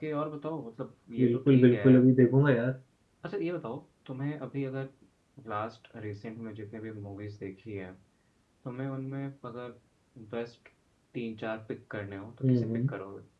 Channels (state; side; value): identical; both; correlation 1.00